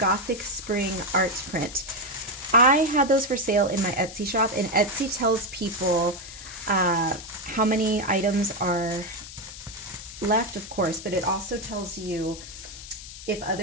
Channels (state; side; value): noise; left; hiss, 13 dB below the sound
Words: Spring art print. I had those for sale in my Etsy shop, and Etsy tells people how many items are left, of course, but it also tells you if